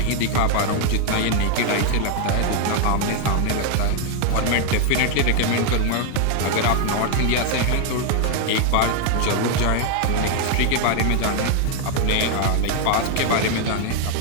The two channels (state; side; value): different; both; correlation 0.00